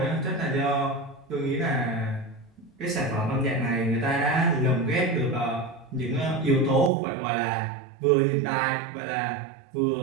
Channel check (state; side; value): drops out; left; at 6.9 s